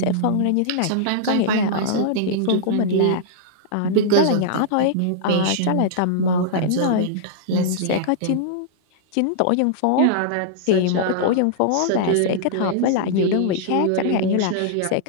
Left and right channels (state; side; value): different; both; correlation -0.02